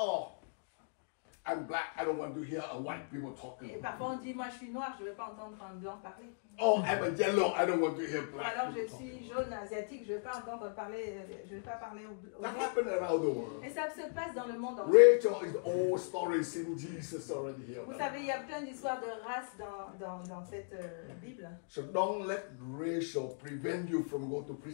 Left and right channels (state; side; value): silent; right; digital silence